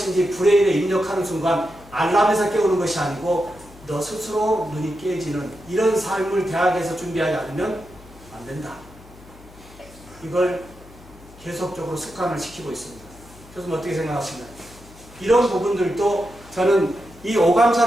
브레인에 입력하는 순간 알람에서 깨우는 것이 아니고 너 스스로 눈이 깨지는 이런 삶을 대학에서 준비하지 않으면 안 된다. 이걸 계속적으로 습관을 시키고 있습니다. 교수님 어떻게 생각하시나요? 이런 부분들도 저는 이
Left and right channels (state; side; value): noise; left; hum, 22 dB below the sound